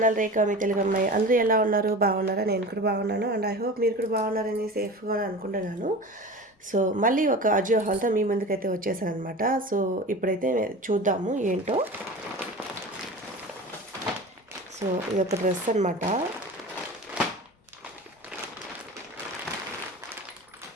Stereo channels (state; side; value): normal; both; correlation 0.34